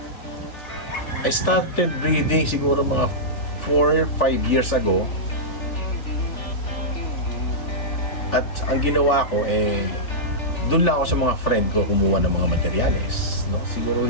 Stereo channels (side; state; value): right; late; 3.4 ms